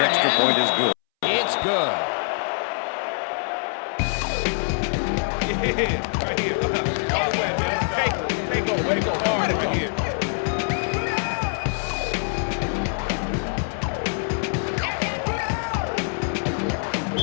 extra and point is good. it's good. Yeah, right here. All the way, man. Take over. Way to go. Hard right here.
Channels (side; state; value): right; silent; 62 dB below the other